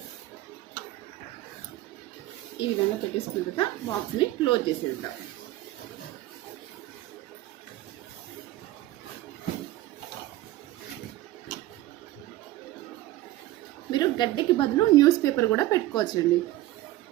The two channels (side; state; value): left; quieter; 16.1 dB